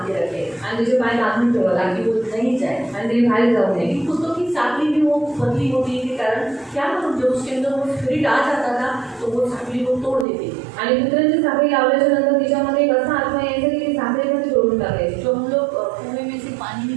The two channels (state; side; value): drops out; left; at 10.2 s